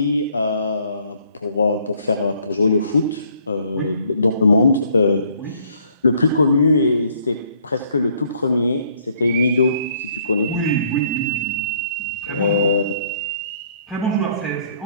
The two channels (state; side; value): inverted; both; correlation -0.63